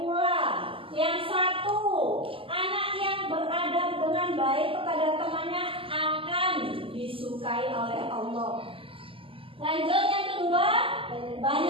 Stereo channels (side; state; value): left; late; 0.26 ms